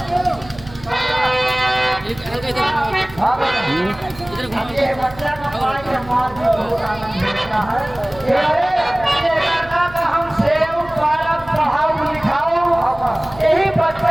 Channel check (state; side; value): noise; right; hum, 19 dB below the sound